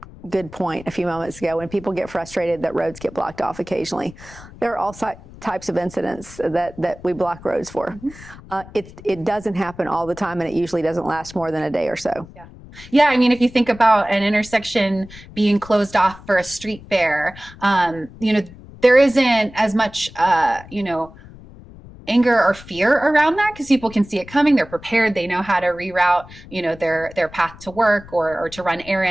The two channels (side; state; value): left; noise; rumble, 19 dB below the sound